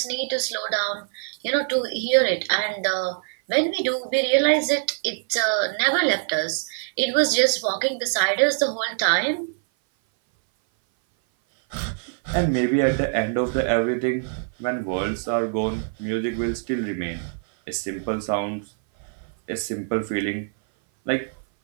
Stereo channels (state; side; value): silent; left; 58 dB below the other